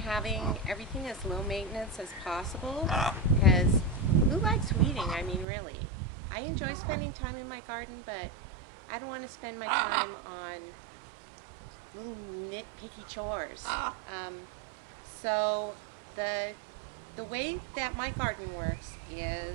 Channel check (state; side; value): drops out; left; at 5.5 s